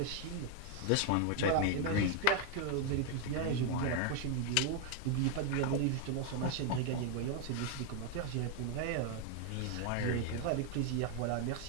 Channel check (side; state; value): both; different; correlation 0.01